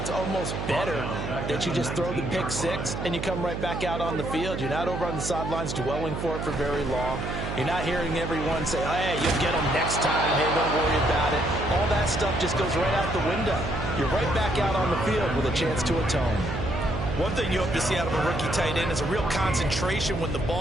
almost better that you just throw the pick 6 and you come right back out on the field. You're not over on the sidelines dwelling for it for very long. You're not hearing everyone say, hey, you'll get them next time. Hey, don't worry about it. All that stuff just goes right out the window. You're right back out on the field with a chance to atone. One thing you hope to see out of a rookie tight end is a real concentration when the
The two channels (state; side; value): noise; right; hum, 4 dB below the sound